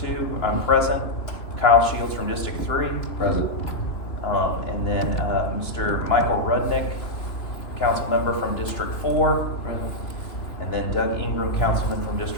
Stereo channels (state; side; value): late; right; 2.9 ms